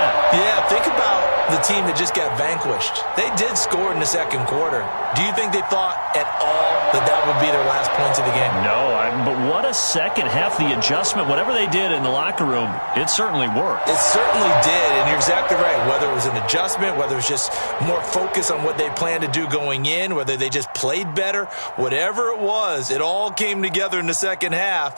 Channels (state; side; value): inverted; both; correlation -1.00